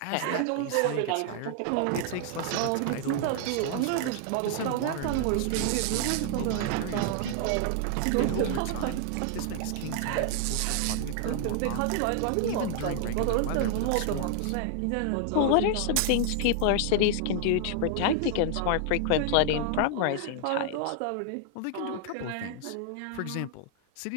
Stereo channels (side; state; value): both; different; correlation 0.00